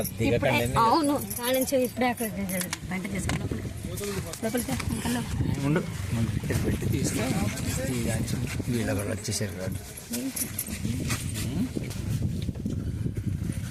అవును, కానించి ఇప్పుడే అక్కడ వంట చేసుకున్నాం. ఉండు పెట్టి తీస్తే వీళ్ళ కూడా వచ్చేసారు కాదు.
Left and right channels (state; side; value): identical; both; correlation 1.00